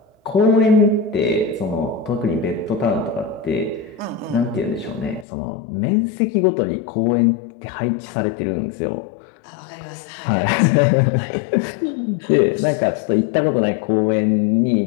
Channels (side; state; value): right; drops out; at 5.2 s